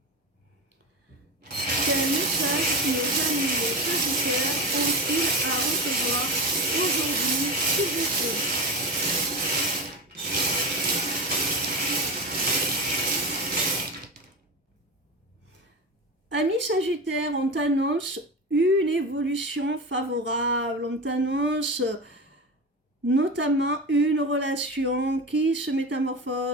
Quel message nos amis les Sagittaires ont-ils à recevoir aujourd'hui, s'il vous plaît? Amis Sagittaires, on t'annonce une évolution favorable, on t'annonce notamment une relation qui se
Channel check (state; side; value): normal; both; correlation 0.22